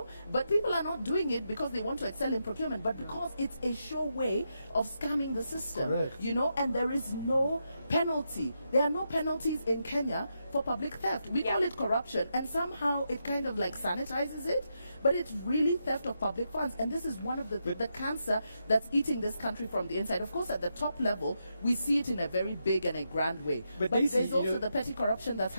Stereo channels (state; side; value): inverted; both; correlation -0.83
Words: but people are not doing it because they want to excel in procurement, but because it's a sure way of scamming the system. Correct. You know, and there is no penalty. There are no penalties in Kenya for public theft. We call it corruption, and somehow it kind of like sanitizes it, but it's really theft of public funds. And this is one of the cancer that's eating this country from the inside. Of course, at the top level, we see it in a very big and a grand way. But there's also the petty corruption that's